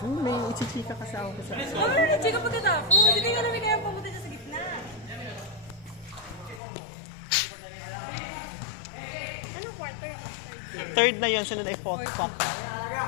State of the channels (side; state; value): right; drops out; at 6.6 s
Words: may ichichika kasi ako sa... Ay, chika pagkatapos. Hindi nga namin kaya pumunta siya sa gitna. Anong quarter ako? Third na yun, sunod ay fourth quarter.